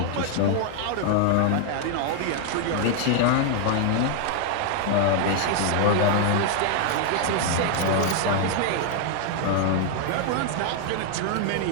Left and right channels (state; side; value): different; both; correlation 0.00